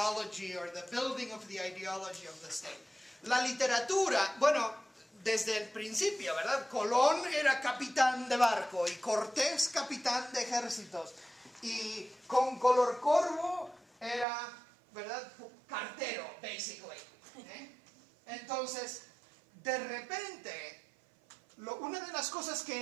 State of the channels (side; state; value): left; drops out; at 14.2 s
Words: or the building of the ideology of the state. La literatura, bueno, desde el principio, ¿verdad? Colón era capitán de barco y Cortés capitán de ejércitos. Y con Color Corvo era, ¿verdad? Cartero, basically. Entonces, de repente, una de las cosas